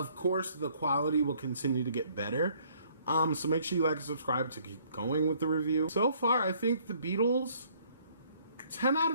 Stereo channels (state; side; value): inverted; both; correlation -0.62